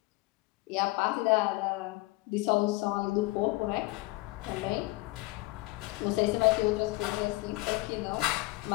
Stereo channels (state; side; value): quieter; right; 21.6 dB